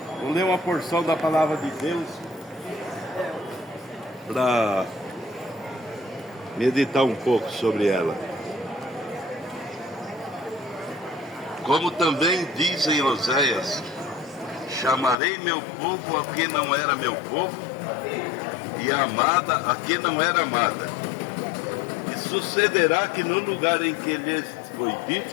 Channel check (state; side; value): drops out; right; at 15.2 s